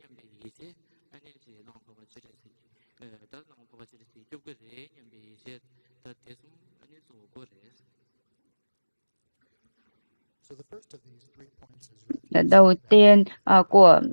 이제 아니 지 랑 바바 지레스 다랑 바바 지레스 좁게레 냠베 이제 다 대숨 아니 조고레스. So the first of these 3 points is refuge. Đầu tiên của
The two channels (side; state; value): both; inverted; correlation -1.00